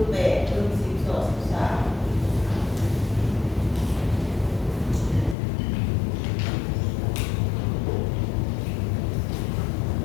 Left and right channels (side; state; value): right; drops out; at 5.4 s